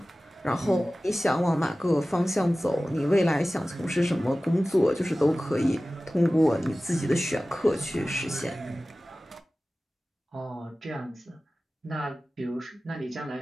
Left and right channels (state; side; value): normal; both; correlation 0.96